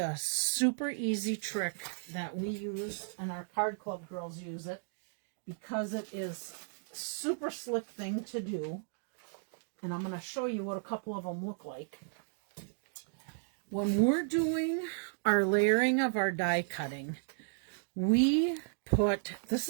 a super easy trick that we use, and our card club girls use it, because it is a super slick thing to do. And I'm going to show you what a couple of them look like. When we're doing our layering of our die cutting, we put, this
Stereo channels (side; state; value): left; silent; digital silence